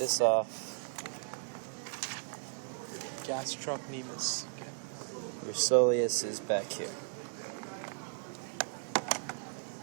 off, Gastrocnemius. Okay. your soleus is back here.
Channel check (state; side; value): silent; left; 54 dB below the other